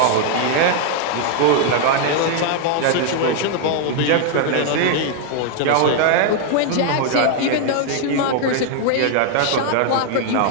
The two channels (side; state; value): both; different; correlation 0.00